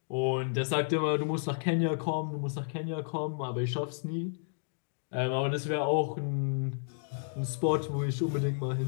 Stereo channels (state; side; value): silent; right; digital silence